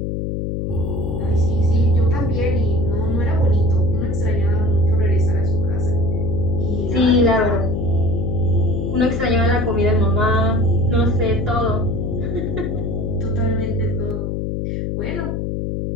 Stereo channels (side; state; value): left; noise; hum, 2 dB below the sound